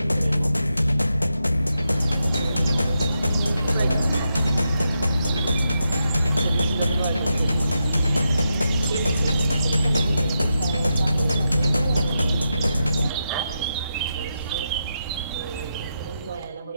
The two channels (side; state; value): both; inverted; correlation -0.86